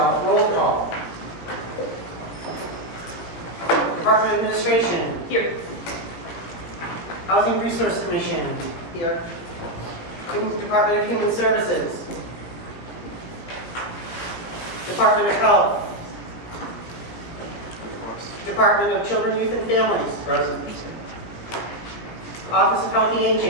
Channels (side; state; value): right; late; 18 ms